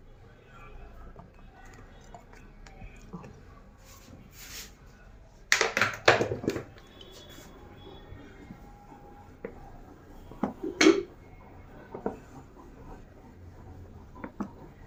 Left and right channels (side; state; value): both; identical; correlation 1.00